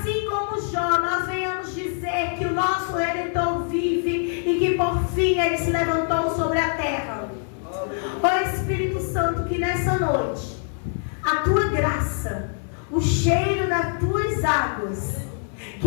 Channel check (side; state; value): right; silent; 56 dB below the other